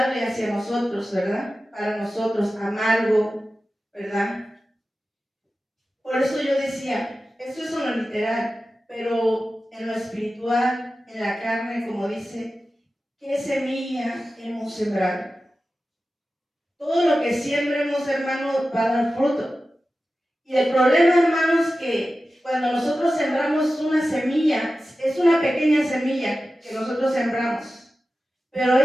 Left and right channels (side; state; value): both; normal; correlation 0.94